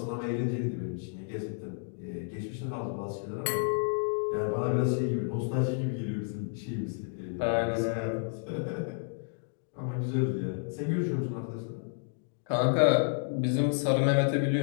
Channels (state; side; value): silent; right; digital silence